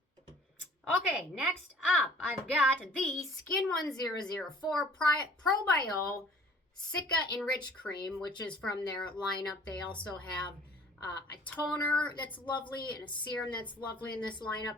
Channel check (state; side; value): normal; both; correlation 0.52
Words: Okay, next up, I've got the Skin 1004 Probio Cica Enrich Cream, which is from their lineup. They also have a toner that's lovely and a serum that's lovely in this lineup.